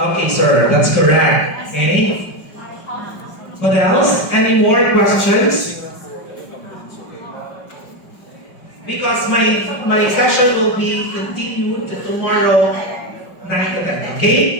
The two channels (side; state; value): right; late; 5.3 ms